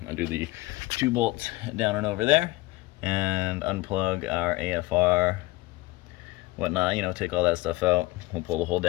undo the 2 bolts down and over there, and unplug our AFR, whatnot, you know, take all that stuff out. We'll pull the whole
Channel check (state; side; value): quieter; right; 20.3 dB